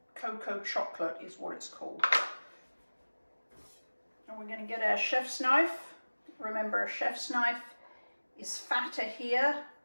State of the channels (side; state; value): both; inverted; correlation -1.00